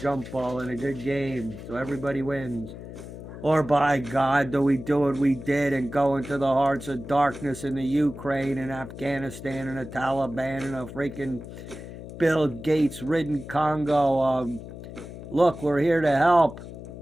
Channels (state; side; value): noise; left; hum, 12 dB below the sound